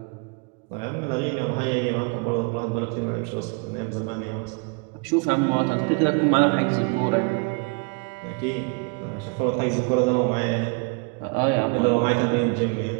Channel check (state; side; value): quieter; left; 32.4 dB